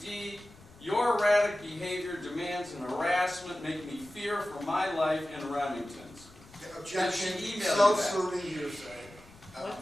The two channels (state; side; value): noise; left; rumble, 23 dB below the sound